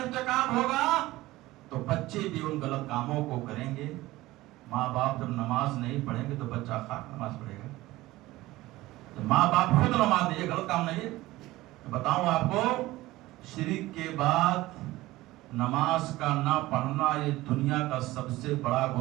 ہوگا تو بچے بھی ان غلط کاموں کو کریں گے۔ ماں باپ جب نماز نہیں پڑھیں گے تو بچہ خاک نماز پڑھے گا۔ جب ماں باپ خود نماز نہیں، یہ غلط کام نہیں ہے۔ بتاؤں آپ کو، شرک کے بعد نماز کا نہ پڑھنا یہ دنیا کا سب سے بڑا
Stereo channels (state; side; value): quieter; left; 18.0 dB